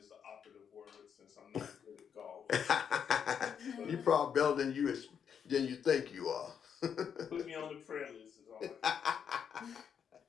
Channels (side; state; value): right; quieter; 7.6 dB